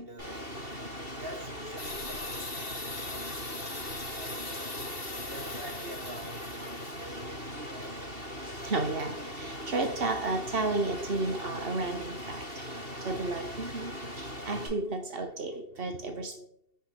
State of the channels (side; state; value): left; late; 2.7 ms